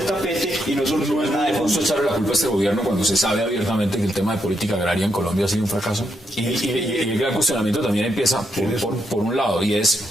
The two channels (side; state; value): both; normal; correlation 0.80